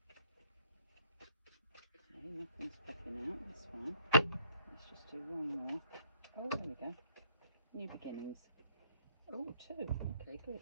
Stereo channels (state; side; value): inverted; both; correlation -0.64